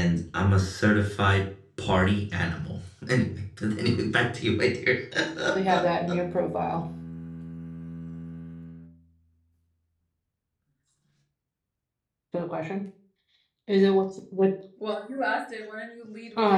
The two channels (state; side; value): identical; both; correlation 1.00